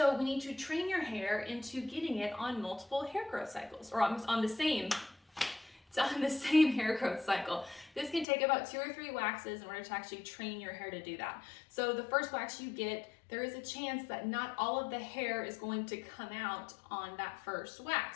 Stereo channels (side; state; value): right; drops out; at 8.2 s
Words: we need to train your hair into getting it on multiple hair growth cycles, or on the same hair growth cycle. This can take about 2 or 3 waxes in order to actually train your hair to do that. So the first wax you get, there is a chance that not all of the hair is going to come out on that first